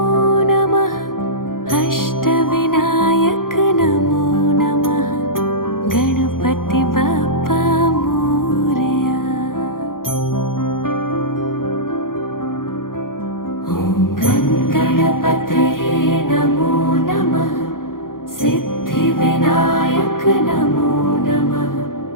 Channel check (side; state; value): right; late; 0.91 ms